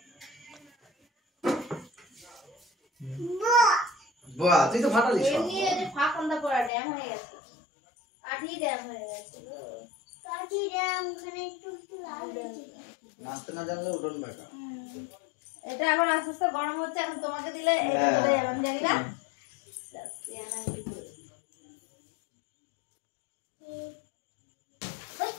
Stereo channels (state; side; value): drops out; right; at 6.7 s